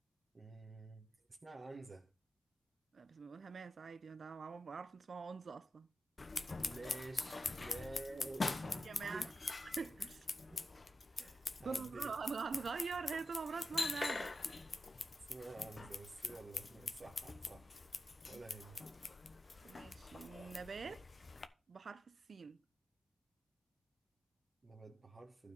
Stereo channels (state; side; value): normal; both; correlation 0.90